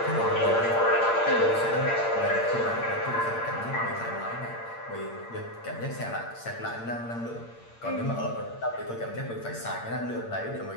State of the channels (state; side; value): late; right; 8.7 ms